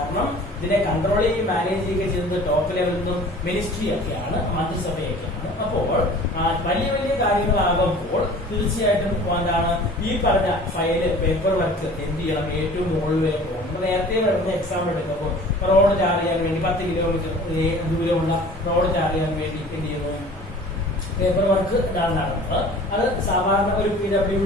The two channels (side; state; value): both; normal; correlation 0.45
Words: ഇതിനെ കൺട്രോൾ ചെയ്യുകയും മാനേജ് ചെയ്യുകയും ചെയ്യുന്നത് ടോപ്പ് ലെവലിൽ നിന്നും മിനിസ്ട്രി ഒക്കെയാണ്, മന്ത്രിസഭയൊക്കെയാണ്. അപ്പോൾ വലിയ വലിയ കാര്യങ്ങളാകുമ്പോൾ തീർച്ചയായിട്ടും എന്താണ് ഈ പറഞ്ഞ ഫയല് പേപ്പർ വർക്ക് എന്ത് ചെയ്യണം? ഏറ്റവും മുകളിലേക്ക് പോകണം. നമ്മൾ നേരത്തെ വരുന്ന എക്സാം എടുക്കുമ്പോൾ റോഡ് ടാർ ചെയ്യാൻ വേണ്ടി 10 കിലോമീറ്റർ ദൂരമുള്ള റോഡ് ടാർ ചെയ്യാൻ വേണ്ടി എന്ത് ചെയ്യുന്നു? പേപ്പർ വർക്ക് ഇതാണ് നടന്നത്. അത് സാധാരണ ഒരു